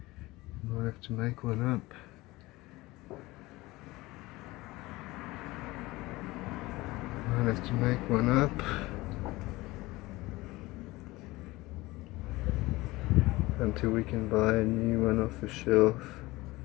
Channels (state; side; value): quieter; right; 20.3 dB